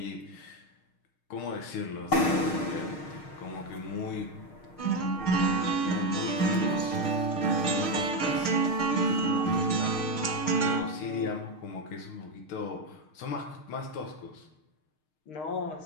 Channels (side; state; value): right; late; 6.5 ms